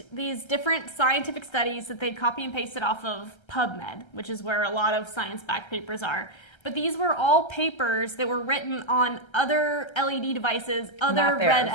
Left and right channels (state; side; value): late; right; 1.3 ms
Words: these different scientific studies that they'd copy and pasted off of PubMed, which is where a lot of science-backed papers are. But these were all papers that were written on other LED devices, other red